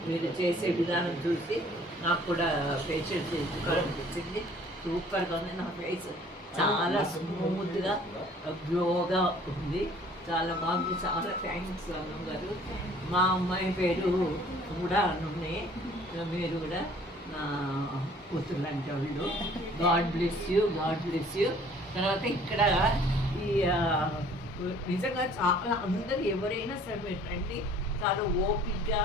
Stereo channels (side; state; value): both; normal; correlation 0.54